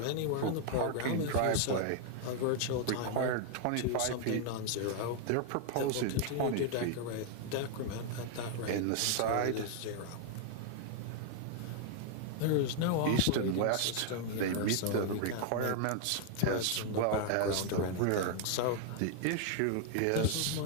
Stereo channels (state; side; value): different; both; correlation 0.00